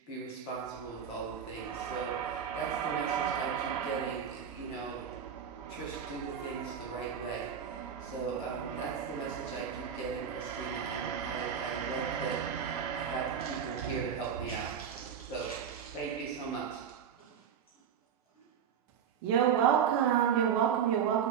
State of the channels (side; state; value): left; quieter; 7.8 dB